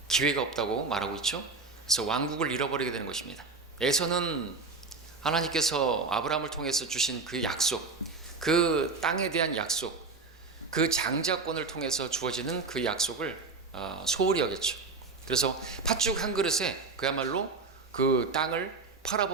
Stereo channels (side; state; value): left; quieter; 4.1 dB